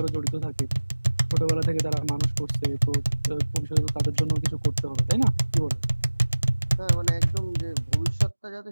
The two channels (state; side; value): inverted; both; correlation -1.00